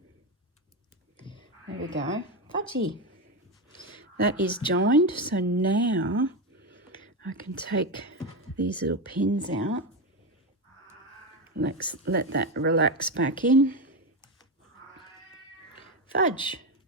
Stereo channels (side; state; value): both; normal; correlation 0.13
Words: There we go. Fudgy. That is joined. So now I can take these little pins out. Let's let that relax back in. Fudge.